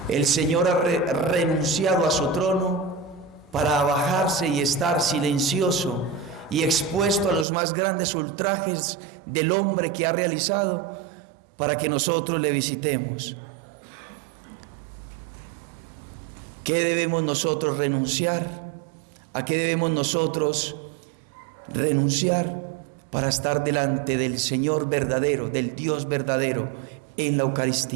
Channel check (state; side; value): drops out; left; at 7.5 s